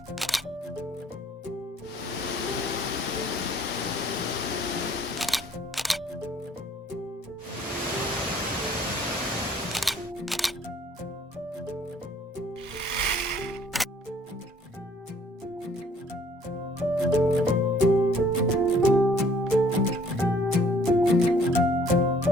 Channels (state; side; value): normal; both; correlation 0.59